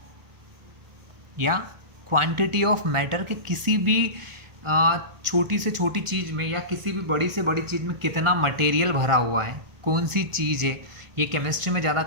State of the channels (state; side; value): late; left; 1.4 ms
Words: या क्वांटिटी ऑफ मैटर के किसी भी छोटी से छोटी चीज़ में या किसी भी बड़ी से बड़ी चीज़ में कितना मटेरियल भरा हुआ है, कौन सी चीज़ है, ये केमिस्ट्री में ज़्यादा